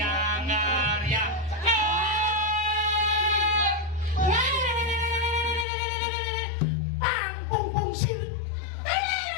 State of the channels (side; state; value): right; drops out; at 5.7 s